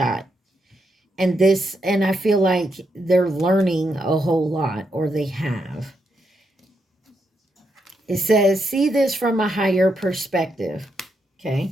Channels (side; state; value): both; normal; correlation 0.81